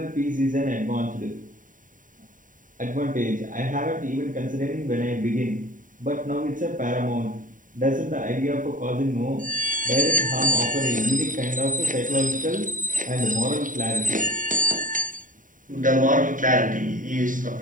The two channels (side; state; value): left; late; 0.38 ms